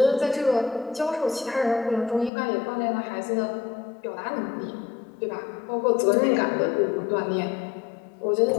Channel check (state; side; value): drops out; right; at 2.3 s